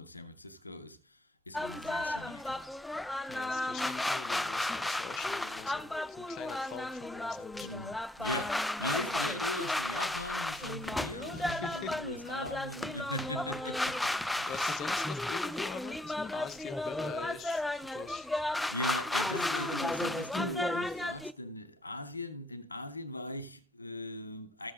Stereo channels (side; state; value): both; normal; correlation 0.67